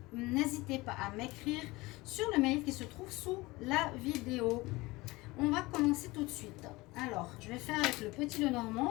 n'hésitez pas à m'écrire sur le mail qui se trouve sous la vidéo. On va commencer tout de suite. Alors, je vais faire avec le petit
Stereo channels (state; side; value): quieter; right; 21.5 dB